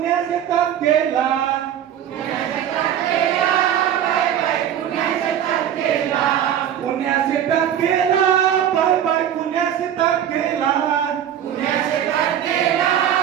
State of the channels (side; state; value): left; quieter; 10.1 dB